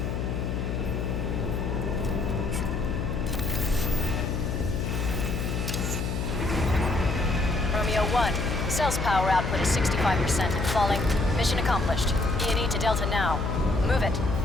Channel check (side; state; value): left; noise; hum, 1 dB below the sound